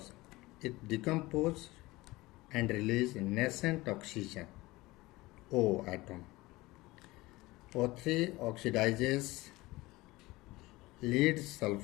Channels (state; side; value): quieter; right; 20.3 dB